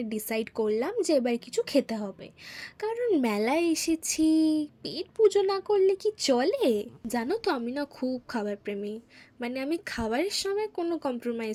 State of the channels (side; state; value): both; identical; correlation 1.00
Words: ডিসাইড করলাম যে এবার কিছু খেতে হবে, কারণ মেলায় এসেছি, পেট পুজো না করলে কি চলে? জানো তো আমি না খুব খাবার প্রেমী, মানে আমি খাবারের সময় কোনো